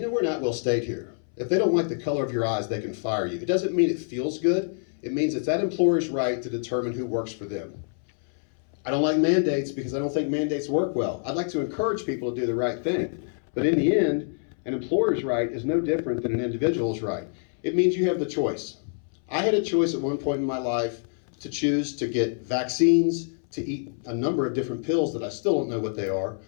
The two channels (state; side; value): silent; right; 61 dB below the other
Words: not at-will state here. If they don't like the color of your eyes, they can fire you. It doesn't mean it feels good. It means it's that employer's right to determine who works for them. I don't like mandates because I don't think mandates work well. I'd like to encourage people to do the right thing. But in the end, an employer's right is no different than an individual's right. It means you have the choice. I had a choice at one point in my life to choose to get vaccines, to eat a number of different pills that I still don't know what they are,